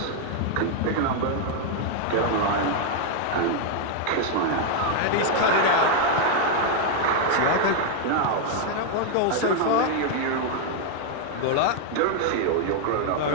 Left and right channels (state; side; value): different; both; correlation 0.00